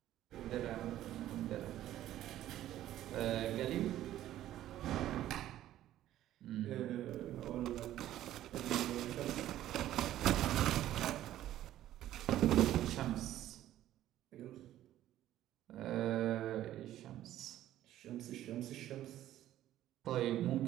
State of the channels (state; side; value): quieter; left; 13.1 dB